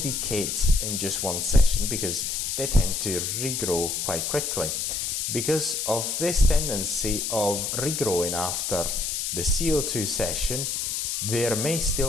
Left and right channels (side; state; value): left; noise; hiss, 1 dB below the sound